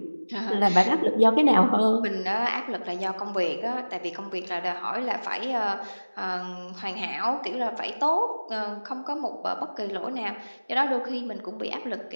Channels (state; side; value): inverted; both; correlation -1.00